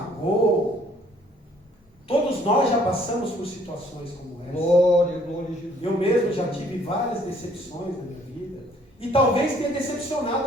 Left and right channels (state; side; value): normal; both; correlation 0.61